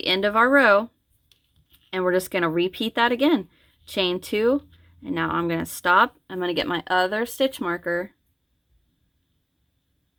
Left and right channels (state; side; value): identical; both; correlation 1.00